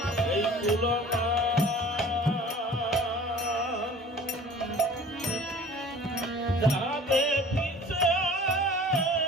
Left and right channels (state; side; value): normal; both; correlation 0.46